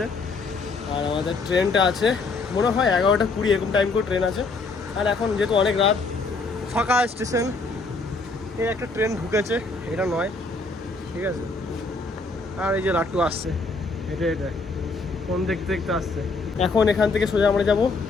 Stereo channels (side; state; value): right; quieter; 3.7 dB